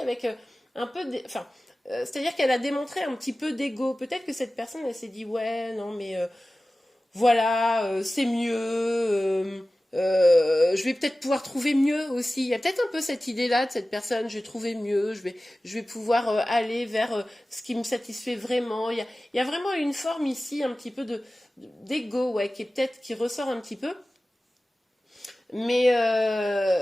un peu... Enfin, c'est-à-dire qu'elle a démontré un petit peu d'ego. Peut-être que cette personne, elle s'est dit, ouais, non, mais voilà, c'est mieux. Je vais peut-être pouvoir trouver mieux aussi. Il y a peut-être un peu cette idée-là de cette personne, je vais trouver mieux, je vais pouvoir aller vers ce qui me satisfait vraiment. Il y a vraiment une forme ici, un petit peu d'ego, ouais, qui est peut-être, qui ressort un petit peu. Mais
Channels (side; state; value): both; normal; correlation 0.96